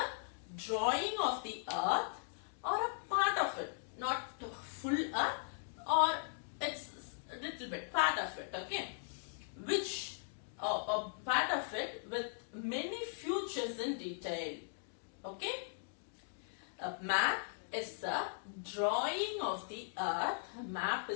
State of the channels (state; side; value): silent; right; digital silence